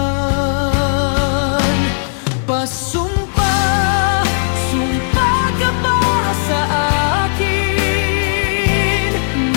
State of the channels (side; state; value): right; silent; 69 dB below the other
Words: Pasumpa, sumpa ka ba sa akin